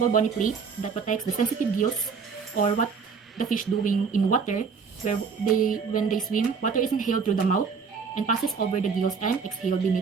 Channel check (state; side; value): quieter; left; 5.7 dB